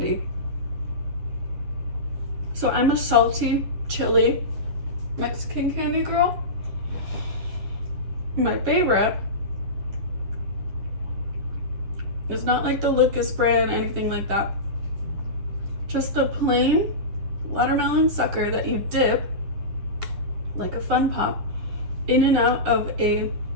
So I'm a salty, chili Mexican candy girl. My favorite is not like the Lucas brand, anything like that. Just the plain watermelon sucker that you dip, like a Fun Pop, in and out of a,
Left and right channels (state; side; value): late; left; 10 ms